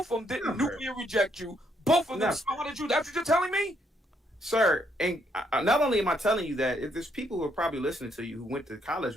of them didn't nuclear reject you. Both of them smiled at you. That's what you're telling me? Sir, and not only am I telling you that, if there's people who are probably listening to you who went to college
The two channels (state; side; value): normal; both; correlation 0.72